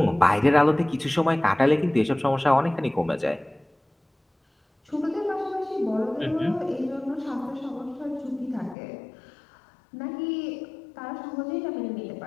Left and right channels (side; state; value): right; drops out; at 8.8 s